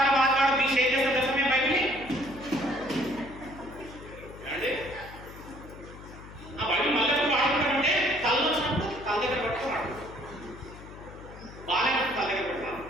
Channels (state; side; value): noise; left; hum, 16 dB below the sound